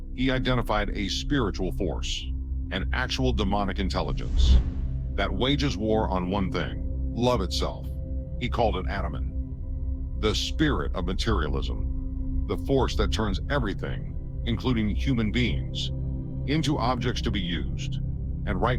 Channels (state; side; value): identical; both; correlation 1.00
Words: he identified a spiritual force, an actual demonic intelligence, that wages war on one thing, love itself. He called it Ahriman, the spirit of materialism, the force that turns everything, including human beings, into objects to be used. And right